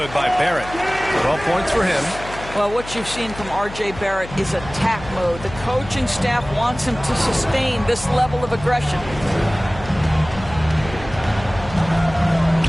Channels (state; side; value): noise; left; hum, 14 dB below the sound